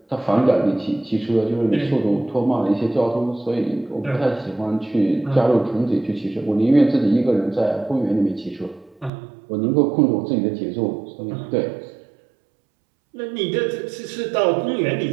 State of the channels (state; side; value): drops out; left; at 9.1 s